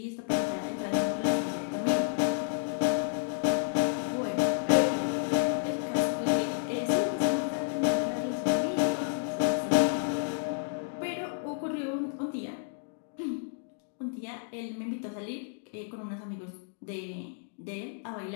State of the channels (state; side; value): silent; right; digital silence